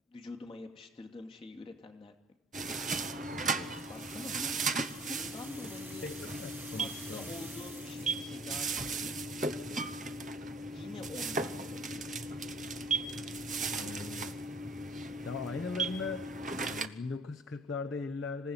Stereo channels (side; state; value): both; normal; correlation 0.51